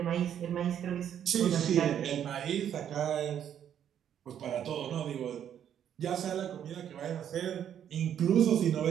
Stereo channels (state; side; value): quieter; left; 9.5 dB